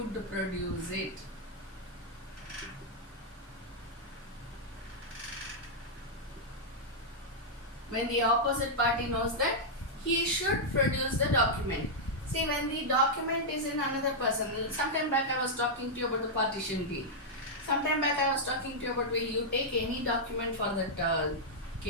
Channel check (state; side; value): normal; both; correlation -0.06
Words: produce it. When the opposite party knows that he should produce the document. See, when the document is in another person, sometime back I was talking to you about the partition deed. Sometime back I was talking to you about will you take any document for that